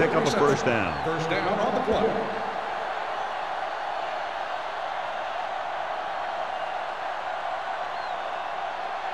up a first down. First down on the play.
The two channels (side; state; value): both; identical; correlation 1.00